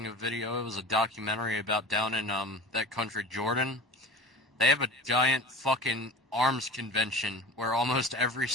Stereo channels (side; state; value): both; normal; correlation 0.36